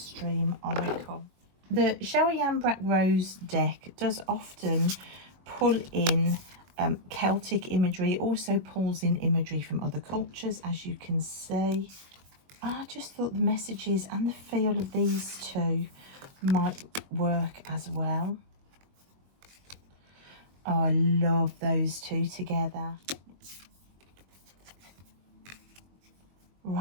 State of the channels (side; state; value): left; late; 22 ms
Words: Oracle. The Cheryl Yambrak Rose deck does often pull in Celtic imagery. It also pulls in imagery from other cultures, as you can see. I just thought the messages and the feel of these two might work as well. Oh, I love those two together.